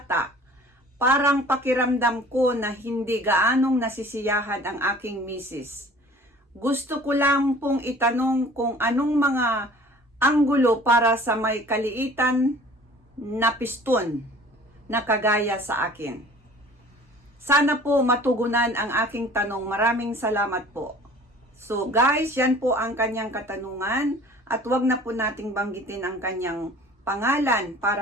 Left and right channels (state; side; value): normal; both; correlation 0.48